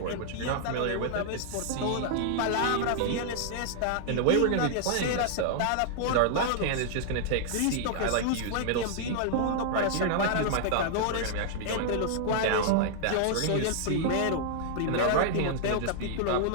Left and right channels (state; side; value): different; both; correlation -0.01